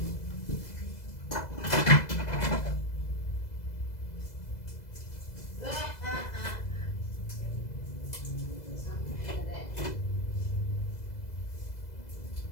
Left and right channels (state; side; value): late; right; 2.0 ms